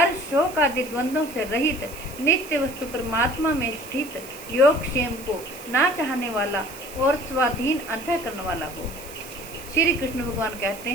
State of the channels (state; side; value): noise; right; hiss, 16 dB below the sound